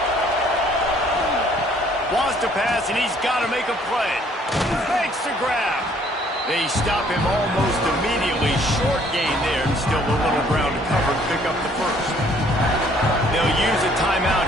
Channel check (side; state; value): both; normal; correlation 0.61